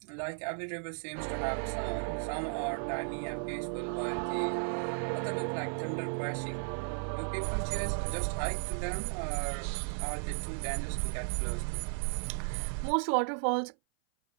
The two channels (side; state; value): left; silent; 54 dB below the other